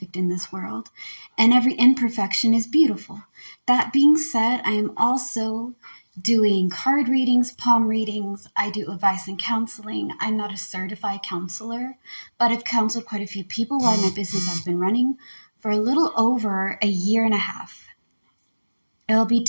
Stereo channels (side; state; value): both; inverted; correlation -1.00